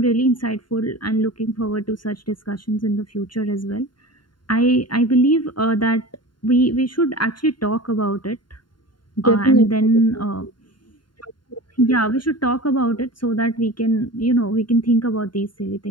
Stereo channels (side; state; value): right; late; 0.72 ms